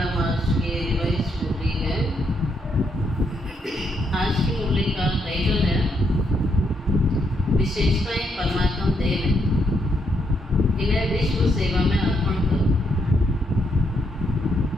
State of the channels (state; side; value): normal; both; correlation 0.77